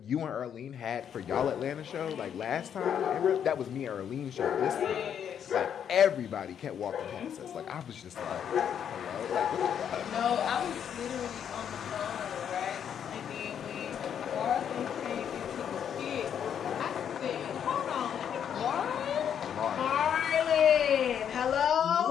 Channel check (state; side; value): quieter; right; 8.6 dB